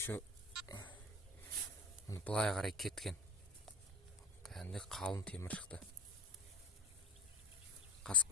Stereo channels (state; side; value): normal; both; correlation 0.34